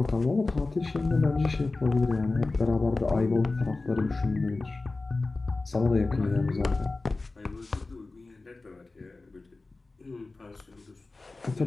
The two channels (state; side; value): quieter; right; 3.4 dB